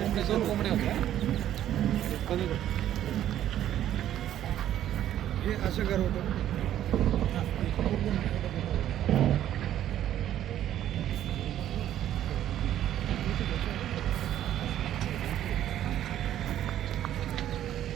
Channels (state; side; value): quieter; left; 11.7 dB